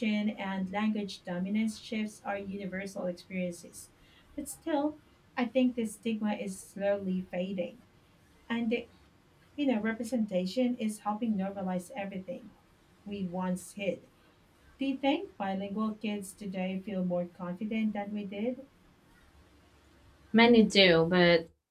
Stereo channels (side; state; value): both; identical; correlation 1.00